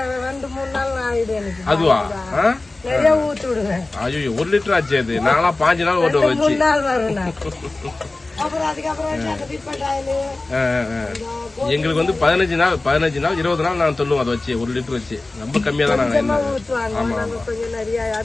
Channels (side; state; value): right; quieter; 3.1 dB